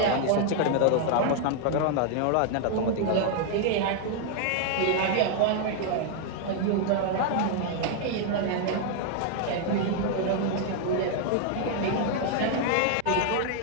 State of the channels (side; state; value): both; different; correlation 0.00